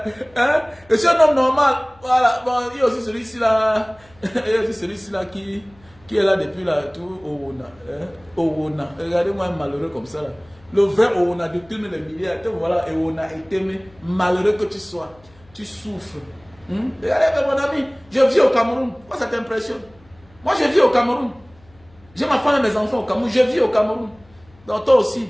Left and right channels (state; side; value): noise; left; hum, 28 dB below the sound